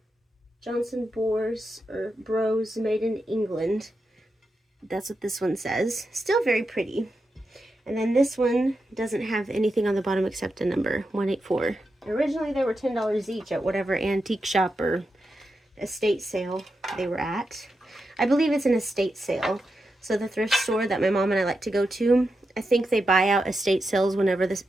Johnson Bros made in England. That's what this one says. Still very pretty. And then this one doesn't have anything on the bottom except a number, 184. Originally they were $10 each at whatever antique shop or estate sale they were at. I believe it's an estate sale. So the thrift store that my mom and I like to go to, I think they buy out estate sales whenever the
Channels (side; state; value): both; normal; correlation 0.88